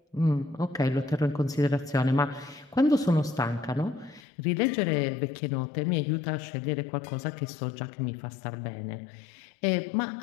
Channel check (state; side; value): drops out; right; at 4.2 s